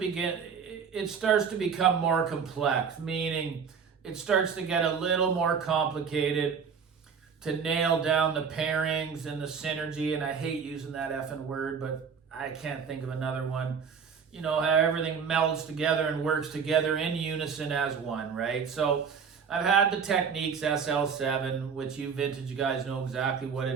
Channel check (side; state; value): left; quieter; 6.4 dB